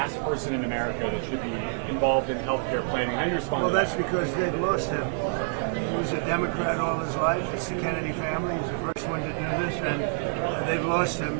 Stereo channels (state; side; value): silent; left; 60 dB below the other